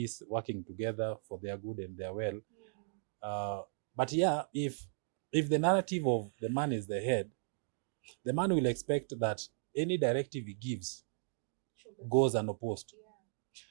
working together for their good and their well. But yeah, if the narrative of the man is the head, the man will expect that any directive he gives goes unopposed.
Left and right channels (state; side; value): silent; left; digital silence